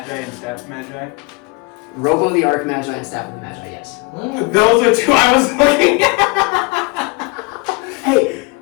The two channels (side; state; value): right; quieter; 28.7 dB